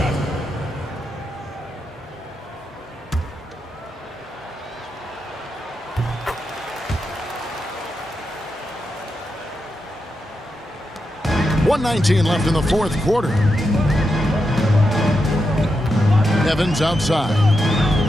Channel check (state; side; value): normal; both; correlation 0.86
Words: .119 left in the fourth quarter. Evans outside.